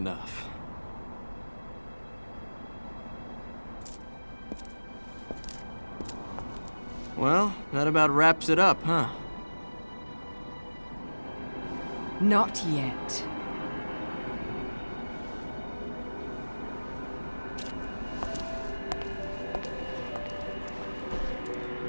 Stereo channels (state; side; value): inverted; both; correlation -1.00